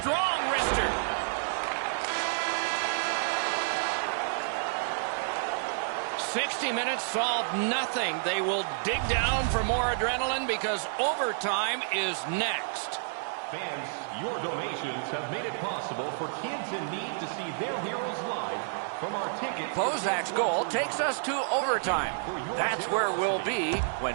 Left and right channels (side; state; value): left; silent; digital silence